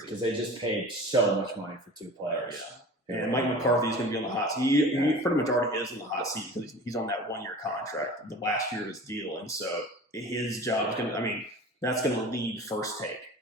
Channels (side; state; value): both; normal; correlation 0.38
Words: because they just paid so much money for 2 players. Yeah. And Mike McCarthy is going to be on the hot seat. He pretty much already is on the hot seat because he's on that 1-year contract, the last year of his deal. And so his job is going to, I mean, that's going to lead First Take.